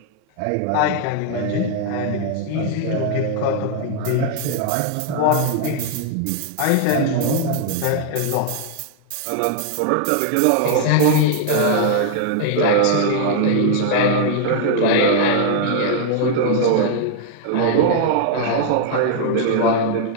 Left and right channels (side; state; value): both; different; correlation 0.00